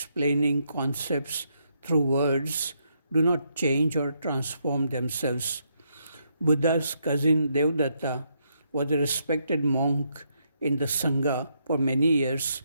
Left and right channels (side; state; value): both; inverted; correlation -0.77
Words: concepts through words do not change or transform themselves. Buddha's cousin Devdatta was a respected monk in the Sangha for many years,